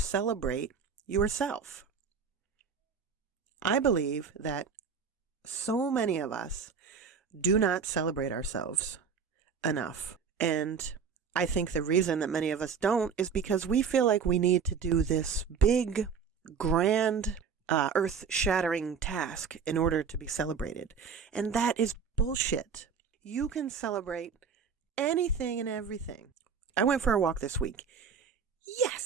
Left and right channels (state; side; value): quieter; left; 6.2 dB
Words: yourself. I believe that so many of us do not celebrate ourselves enough, and I think the reason that many of us don't is because we feel like we need to do this big, grand, earth-shattering task in order to be celebrated. And that is bullshit. You can celebrate anything and everything. I went for a walk this week.